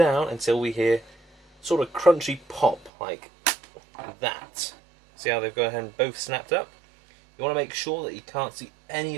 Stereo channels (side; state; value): left; drops out; at 2.9 s